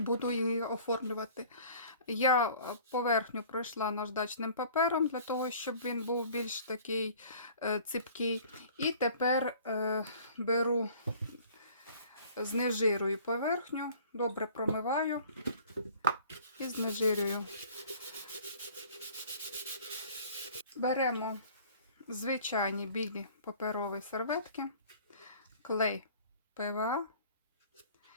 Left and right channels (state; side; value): inverted; both; correlation -0.50